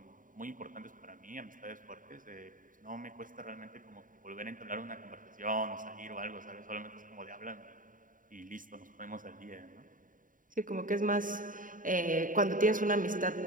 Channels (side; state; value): left; late; 0.39 ms